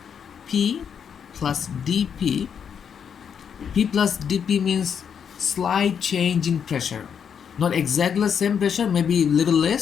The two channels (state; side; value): quieter; right; 7.5 dB